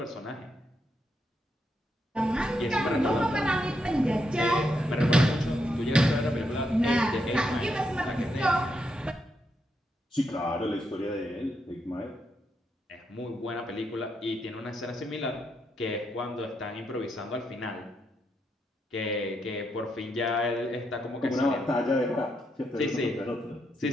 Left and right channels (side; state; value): both; normal; correlation 0.80